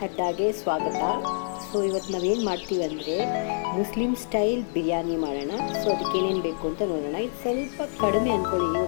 ಅಡ್ಡಾಗೆ ಸ್ವಾಗತ. So ಇವತ್ತು ನಾವೇನು ಮಾಡ್ತೀವಿ ಅಂದರೆ ಮುಸ್ಲಿಂ ಸ್ಟೈಲ್ ಬಿರಿಯಾನಿ ಮಾಡೋಣ. ಸೊ ಅದಕ್ಕೆ ಏನೇನು ಬೇಕು ಅಂತ ನೋಡೋಣ. ಇದು ಸ್ವಲ್ಪ ಕಡಿಮೆ ಅಂದ್ಕೊಳ್ಳಿ,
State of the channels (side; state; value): right; silent; digital silence